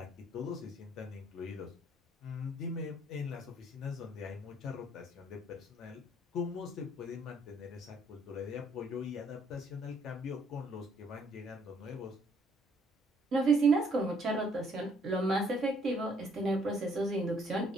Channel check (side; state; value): both; normal; correlation 0.65